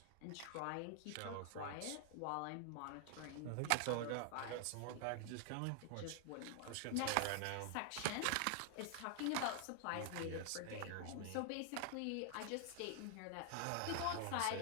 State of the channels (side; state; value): both; different; correlation 0.00